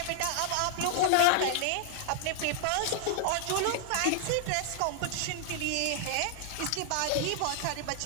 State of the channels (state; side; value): different; both; correlation -0.01